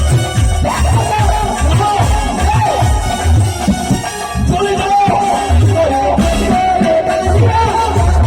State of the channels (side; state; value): both; identical; correlation 1.00